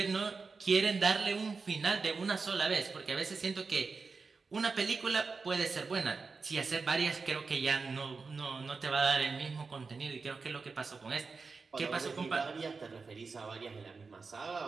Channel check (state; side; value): quieter; left; 4.5 dB